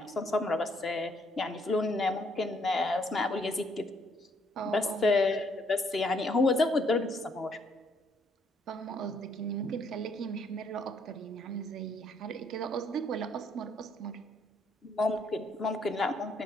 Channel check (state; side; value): normal; both; correlation 0.69